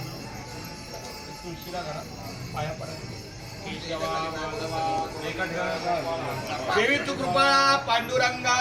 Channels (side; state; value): both; identical; correlation 1.00